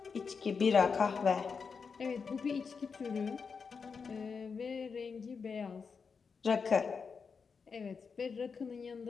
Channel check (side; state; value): right; quieter; 5.5 dB